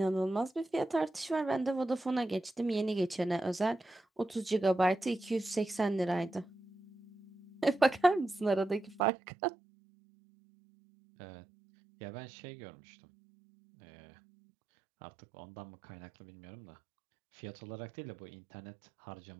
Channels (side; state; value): left; drops out; at 9.1 s